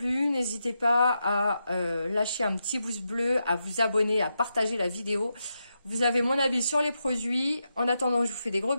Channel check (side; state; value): both; inverted; correlation -0.86